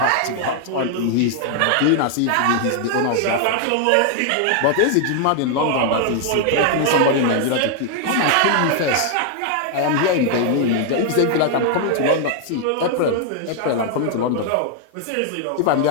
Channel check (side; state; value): both; different; correlation 0.00